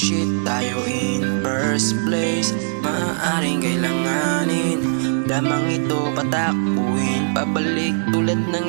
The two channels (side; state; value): left; silent; digital silence